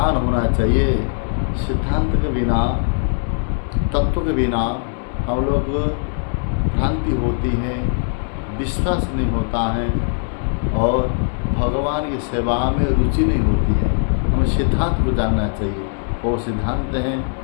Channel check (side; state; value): right; silent; 66 dB below the other